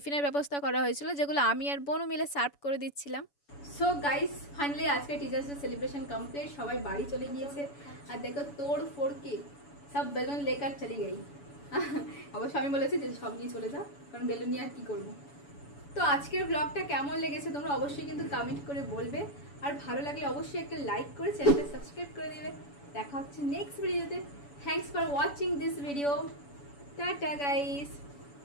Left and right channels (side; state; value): right; late; 7.0 ms